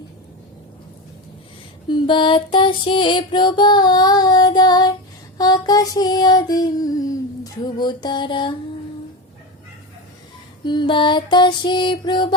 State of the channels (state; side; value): normal; both; correlation 0.20